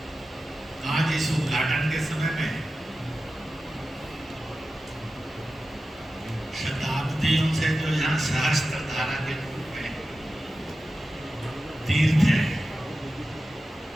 आज इस उद्घाटन के समय में शताब्दियों से जो यहाँ सहस्त्र धारा के रूप में तीर्थ है,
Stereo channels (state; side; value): normal; both; correlation 0.93